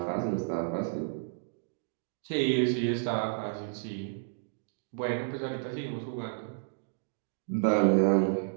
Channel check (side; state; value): left; silent; digital silence